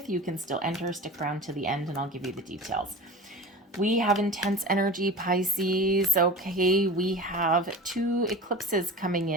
you can still enter. Stick around to the end and I'll give you the details. We have intense energy, Pisces. Okay, we have two eclipses coming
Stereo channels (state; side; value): normal; both; correlation 0.34